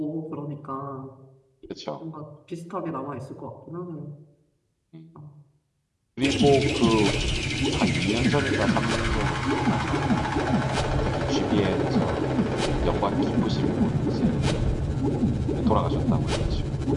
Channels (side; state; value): both; identical; correlation 1.00